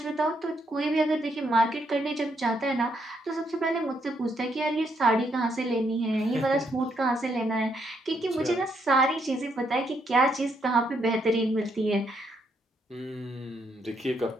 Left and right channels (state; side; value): normal; both; correlation 0.75